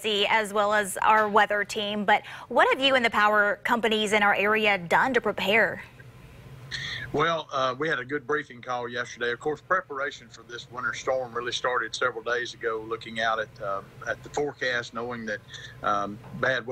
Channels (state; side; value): identical; both; correlation 1.00